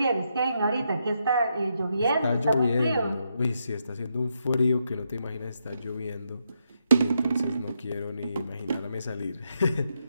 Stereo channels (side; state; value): both; inverted; correlation -0.80